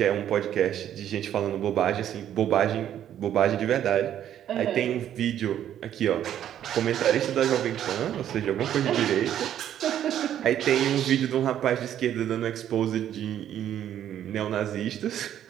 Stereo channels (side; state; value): left; quieter; 10.7 dB